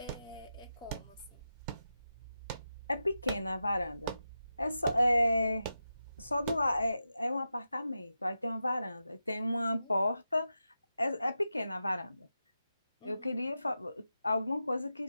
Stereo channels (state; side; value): inverted; both; correlation -0.90